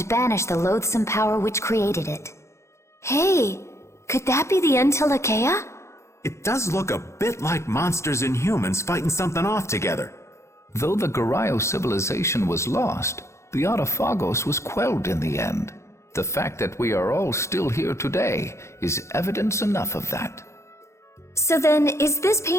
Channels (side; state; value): right; late; 0.14 ms